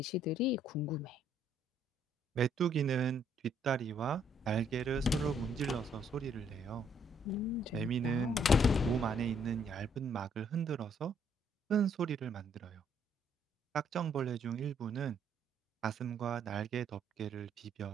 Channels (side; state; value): both; normal; correlation 0.67